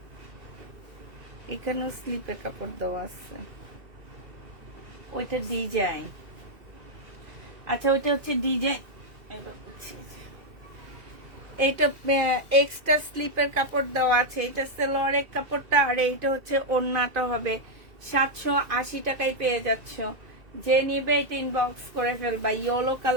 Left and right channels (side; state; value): left; late; 2.2 ms